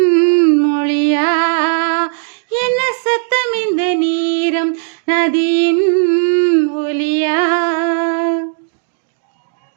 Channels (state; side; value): silent; left; digital silence